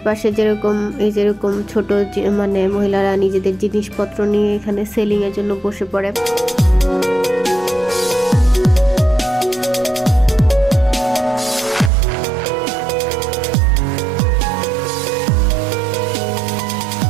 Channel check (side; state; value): left; drops out; at 11.9 s